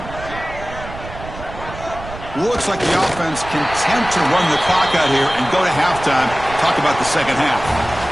Looks like the offense content to run the clock out here and go to halftime. Talk about the second half.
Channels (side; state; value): right; noise; rumble, 13 dB below the sound